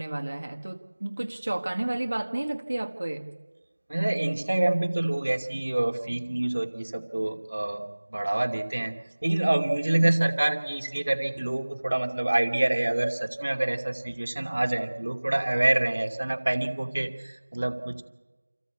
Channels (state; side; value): inverted; both; correlation -1.00